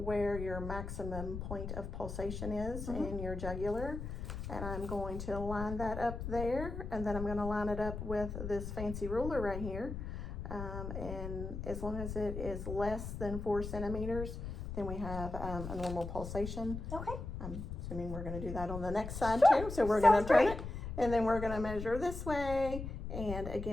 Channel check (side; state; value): left; noise; rumble, 6 dB below the sound